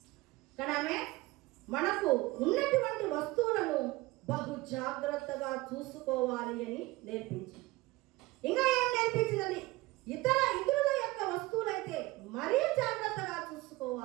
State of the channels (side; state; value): left; quieter; 20.3 dB